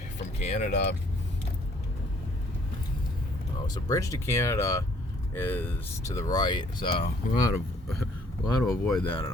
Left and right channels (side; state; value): both; normal; correlation 0.61